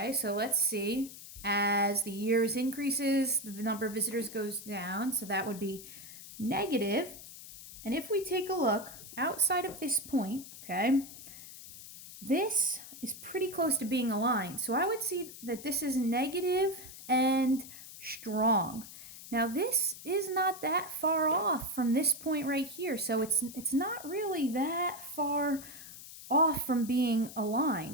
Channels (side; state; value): left; noise; hiss, 14 dB below the sound